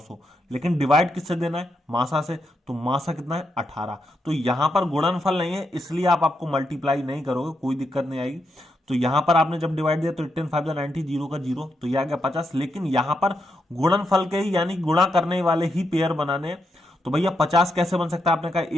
लेकिन डिवाइड किससे देना है, मासा से। तो मासा कितना है 18, तो यहां पर गुणनफल नहीं है, इसलिए आप आपको मल्टीप्लाई नहीं करोगे, कोई दिक्कत नहीं आएगी। तो यहां पर आपने जब डिवाइड दिया तो 18 5 90, 0 का 0, तो यह आ गया 50। लेकिन यहां पर गुणनफल के ही, यानी गुणा करने वाले ही पेयर बनाने, तो भैया 50 कैसे बन सकता है, आपने कहा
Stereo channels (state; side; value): normal; both; correlation 0.82